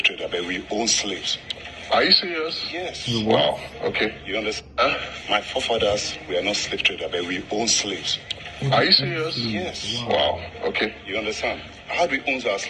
traders, but we own slaves. Are you serious? Yes. Wow. Okay. You understand? Huh? My forefathers were not slave traders, but we own slaves. Are you serious? Yes. Wow. Okay. You understand? How do we own our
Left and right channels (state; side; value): identical; both; correlation 1.00